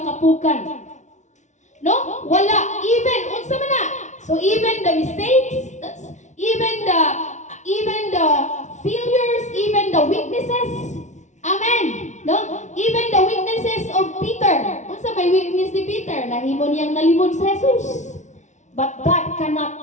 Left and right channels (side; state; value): right; late; 0.34 ms